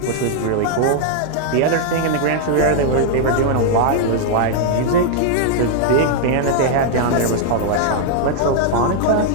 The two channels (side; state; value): both; different; correlation 0.00